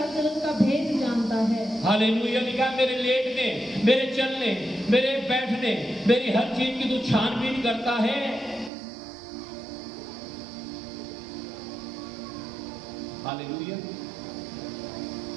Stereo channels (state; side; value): drops out; left; at 8.7 s